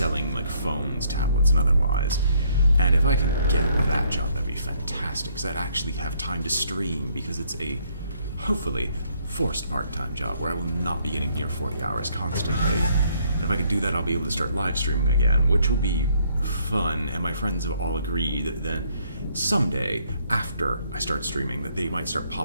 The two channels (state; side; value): inverted; both; correlation -0.67